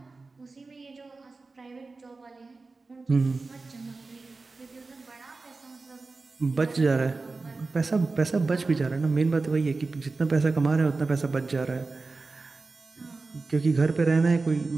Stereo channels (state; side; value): quieter; left; 3.8 dB